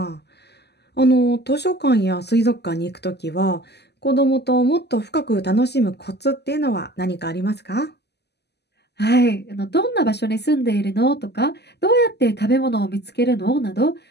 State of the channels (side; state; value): right; late; 0.49 ms